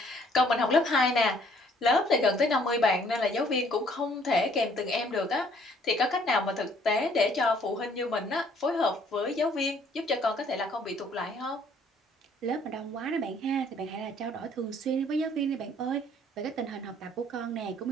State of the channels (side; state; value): both; normal; correlation 0.61